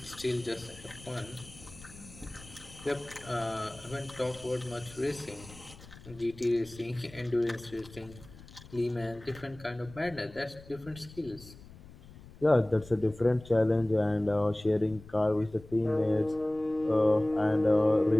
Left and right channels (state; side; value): noise; left; rumble, 19 dB below the sound